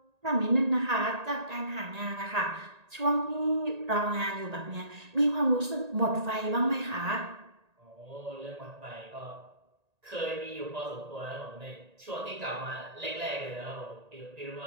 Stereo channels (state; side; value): late; left; 1.8 ms